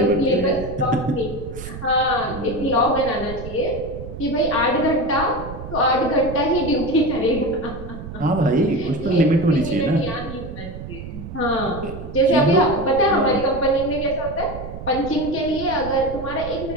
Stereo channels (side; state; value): right; noise; rumble, 11 dB below the sound